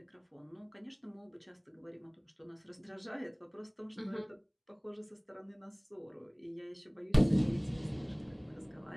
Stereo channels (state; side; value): identical; both; correlation 1.00